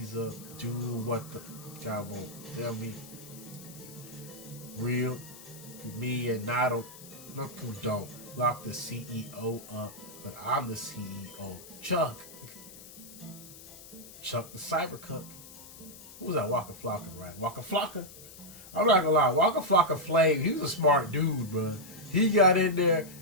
up, do what the guy won't tell me. Real, me and not who don't. Lock the CEO up, but I'm the CEO. Chuck the Cybercuck. Who was that? Waka Flocka, right? Waka Flocka. I'm not gonna lie, Waka Flocka Flame, he was a smart dude, bro. He got in there,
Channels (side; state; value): left; noise; hiss, 17 dB below the sound